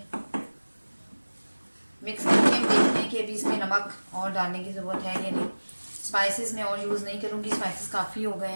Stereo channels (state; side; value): inverted; both; correlation -1.00